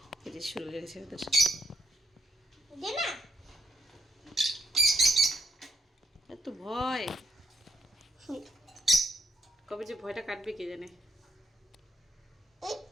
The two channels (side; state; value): both; normal; correlation 0.76